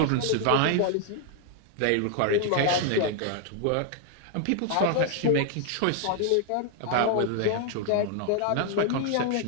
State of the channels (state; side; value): different; both; correlation 0.00